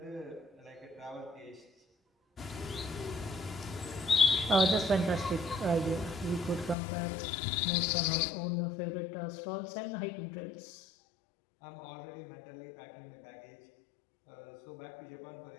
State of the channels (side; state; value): right; drops out; at 6.8 s